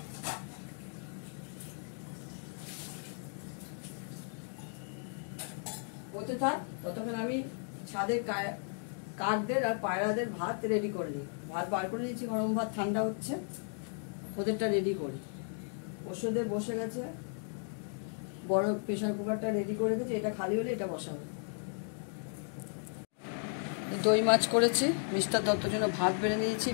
হতে থাক, ততক্ষণ আমি ছাদে কাকদের আর পায়রাদের ভাত রেডি করে নিই। ভাত বার করে দিয়েছি, গরম ভাত, ঠান্ডা হচ্ছে, ওদেরটা রেডি করি। ওষুধে বসে গেছে, বড় প্রেশার কুকারটা রেডি করে দিয়েছি, এটা খালি হলে এটা বসাবো। দই মাছ করেছি, মিস্টার দত্তর জন্য ভাত বেড়ে নিয়েছি,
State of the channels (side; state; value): right; silent; 54 dB below the other